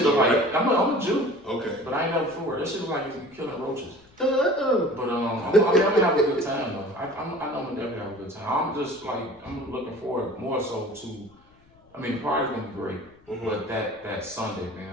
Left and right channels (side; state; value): left; noise; rumble, 30 dB below the sound